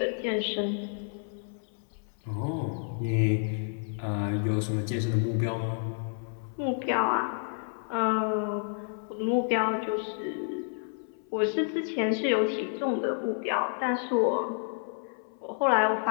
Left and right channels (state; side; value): silent; right; 58 dB below the other